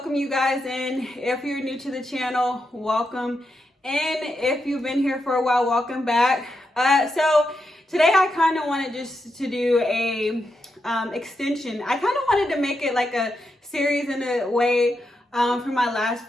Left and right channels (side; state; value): both; normal; correlation 0.85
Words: you guys in. If you're new to the channel, welcome. And if you've been here for a while, welcome back. So today I kind of wanted just to do a extension. I kind of wanted to make it like a series in a way from my last